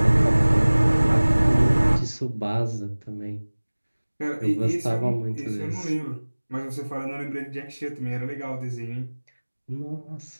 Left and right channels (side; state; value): both; inverted; correlation -1.00